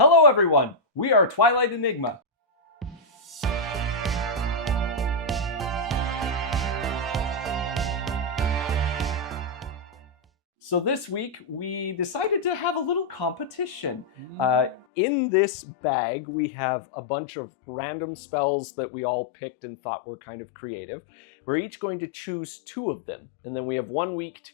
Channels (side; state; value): right; drops out; at 14.9 s